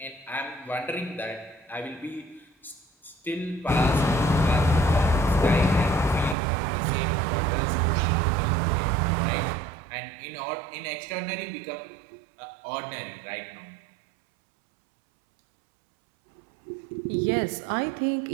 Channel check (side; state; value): left; drops out; at 6.4 s